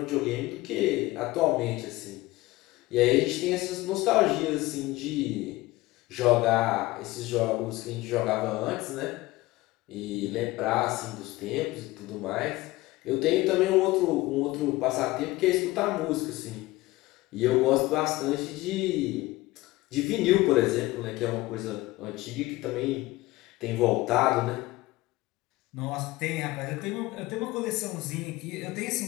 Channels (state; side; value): quieter; right; 19.4 dB